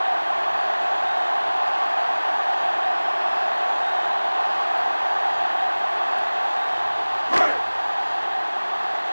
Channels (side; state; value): both; inverted; correlation -1.00